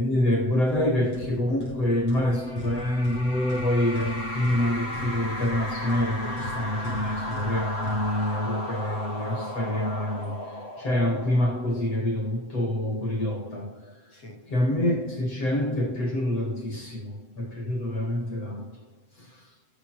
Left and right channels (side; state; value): right; late; 7.8 ms